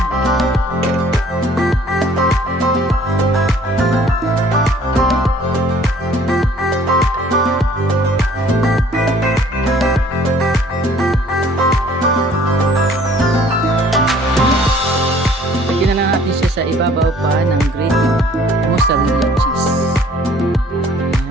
Sa ibabaw pa ng grated mozzarella cheese.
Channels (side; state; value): both; normal; correlation 0.56